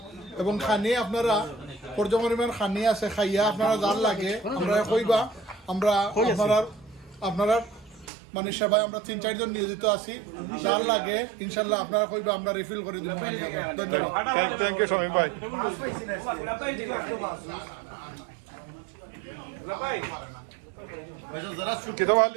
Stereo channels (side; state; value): left; drops out; at 8.1 s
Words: এবং খানি আপনারা পর্যপরিমাণ খানি আছে খাইয়া আপনারা যার লাগে আমরা কইবা আমরা আপনারা মানে সেবায় আমরা 3-4 জন নিয়োজিত আছি যার লাগে ইনশাল্লাহ আপনারা কইবা আমরা রিফিল করে দিব ধন্যবাদ থ্যাংক ইউ শামীম ভাই